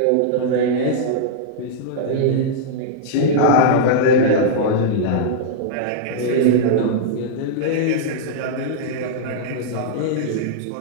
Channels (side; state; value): both; different; correlation -0.02